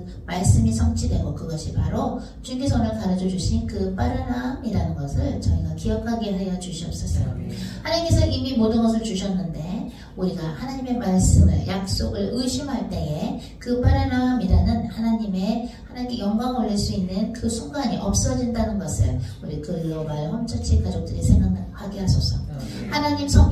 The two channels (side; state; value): both; identical; correlation 1.00